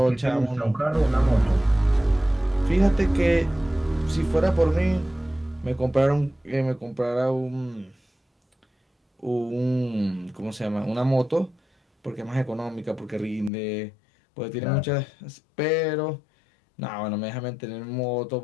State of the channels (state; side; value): drops out; right; at 13.5 s